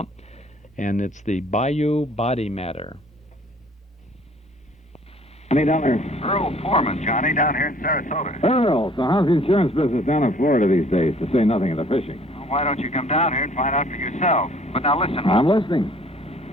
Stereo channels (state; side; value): normal; both; correlation 0.56